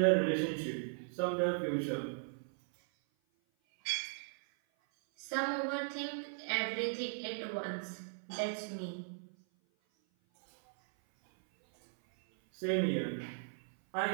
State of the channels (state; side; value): silent; left; 53 dB below the other